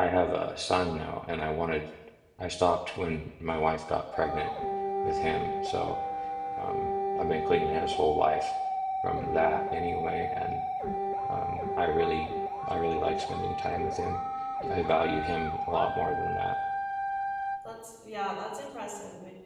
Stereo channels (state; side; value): identical; both; correlation 1.00